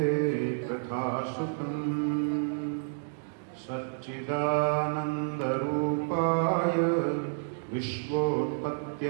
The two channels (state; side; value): silent; left; digital silence